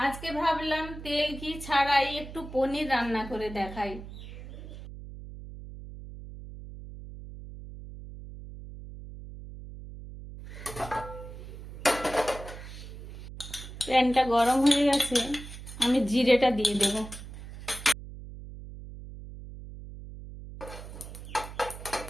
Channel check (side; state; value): right; noise; hum, 13 dB below the sound